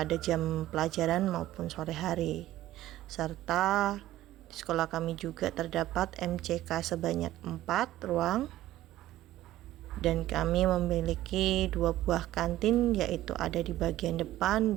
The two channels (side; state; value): left; quieter; 14.7 dB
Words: jam pelajaran maupun sore hari. Serta di sekolah kami juga terdapat MCK sebanyak 4 ruang, dan kami memiliki 2 buah kantin, yaitu ada di bagian depan